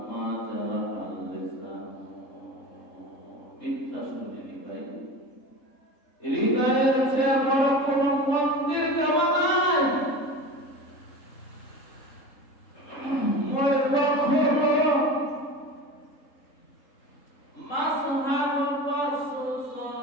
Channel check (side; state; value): right; late; 3.7 ms